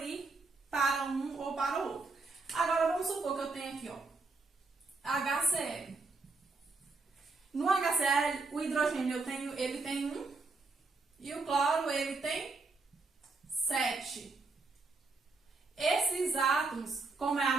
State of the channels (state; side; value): quieter; left; 3.8 dB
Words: para um ou para o outro. Agora, vamos supor que eu tenho aqui, ó, HCl. No HCl, o hidrogênio ele tem 1 e o cloro ele tem 7. Esses átomos, como é